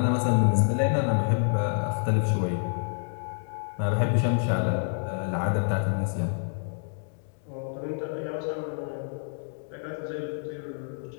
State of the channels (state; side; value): silent; right; digital silence